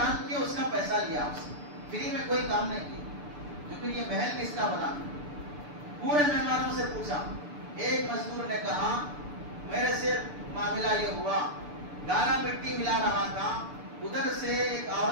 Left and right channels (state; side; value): late; left; 6.8 ms